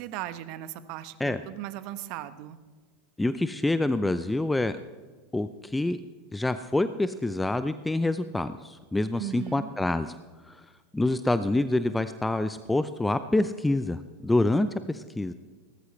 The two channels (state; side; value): normal; both; correlation 0.91